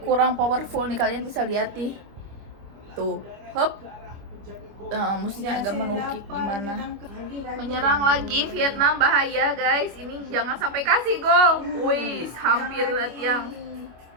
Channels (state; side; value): late; left; 25 ms